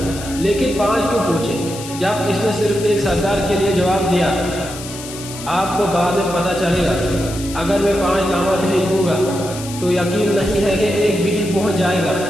لیکن 5 کیوں پوچھے؟ جب اس نے صرف ایک سردار کے لیے جواب دیا، آپ کو بعد میں پتہ چلے گا، اگر میں 5 لاما بھیج دوں گا تو یقین نہیں ہے کہ ایک بھی پہنچ جائے گا،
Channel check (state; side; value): noise; left; hiss, 12 dB below the sound